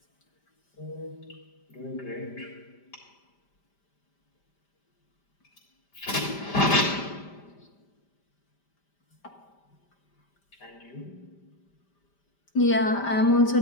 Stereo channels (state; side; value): late; right; 5.1 ms